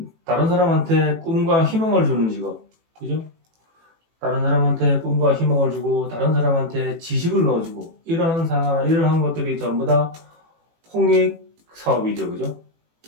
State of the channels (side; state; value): left; late; 18 ms